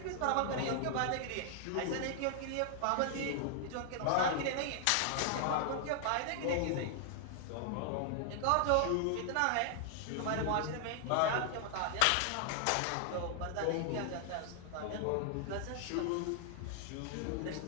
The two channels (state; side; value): different; both; correlation 0.00